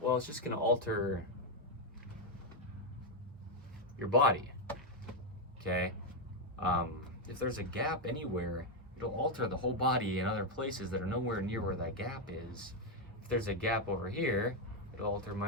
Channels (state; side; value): normal; both; correlation 0.02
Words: it's just going to alter your body, okay? If there's a gap anywhere, it'll alter the whole body in other places that are nowhere near where that gap is. If there's a gap over here, it'll alter